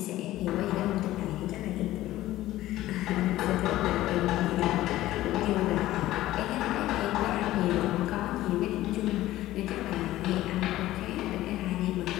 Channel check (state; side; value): quieter; right; 15.4 dB